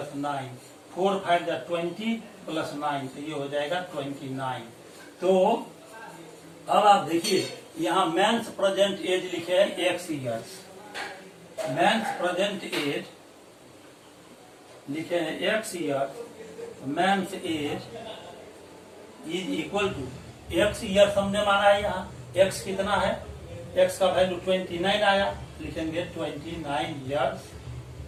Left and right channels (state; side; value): identical; both; correlation 1.00